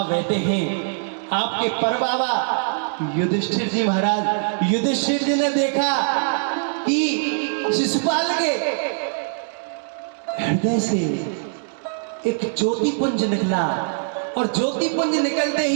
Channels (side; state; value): left; silent; digital silence